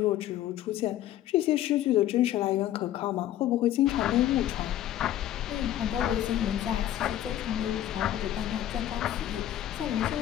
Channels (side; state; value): right; quieter; 12.5 dB